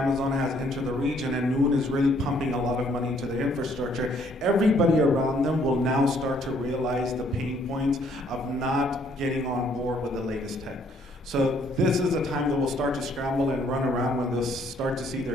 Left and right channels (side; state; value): both; normal; correlation 0.65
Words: has entered the region and Noon is really pumping a lot of money into the infrastructure, everybody around them will now start to realize the pain points of not getting on board with the latest tech. So this is a time that we'll start to scramble and run around when they'll start to see